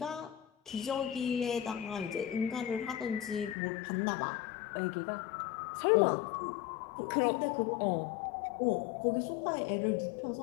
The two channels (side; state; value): right; drops out; at 3.6 s